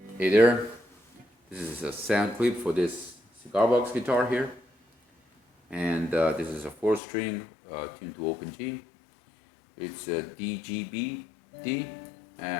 Hey there, this is a sound clip for this cigar box guitar here, and this is a 4-string tuned to open G. It's a DGB D,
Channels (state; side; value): drops out; right; at 7.0 s